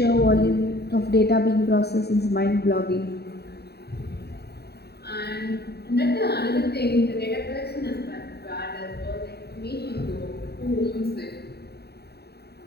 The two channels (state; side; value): late; right; 0.47 ms